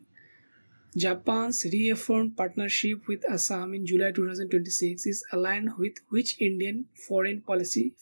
Japan's reaffirmed partnership with Assam in July 2026 is aligned with which Indian foreign policy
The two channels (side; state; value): both; inverted; correlation -1.00